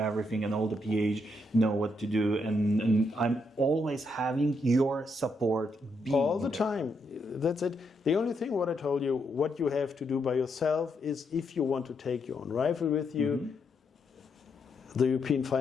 and all the PH know what to do, and I'm always having your support all the time. That's it. The only thing what I told you, what you have to do by yourself is if you want to take your own rifle with you, the European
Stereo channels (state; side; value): normal; both; correlation 0.78